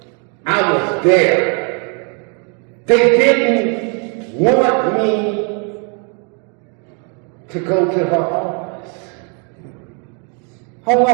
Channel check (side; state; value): left; quieter; 37.7 dB